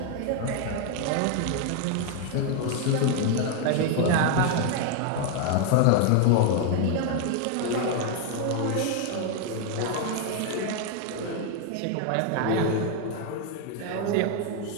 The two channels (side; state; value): both; different; correlation 0.01